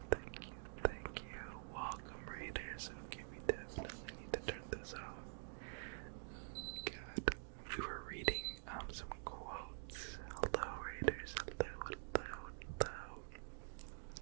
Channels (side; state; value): left; silent; digital silence